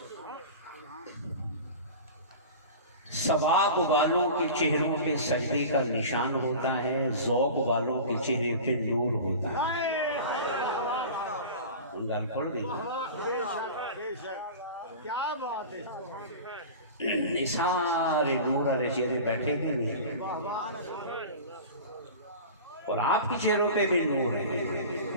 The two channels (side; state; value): both; inverted; correlation -0.35